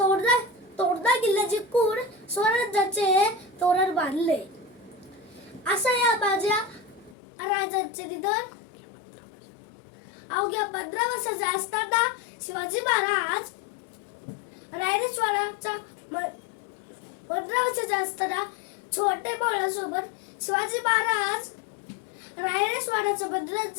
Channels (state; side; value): drops out; right; at 7.2 s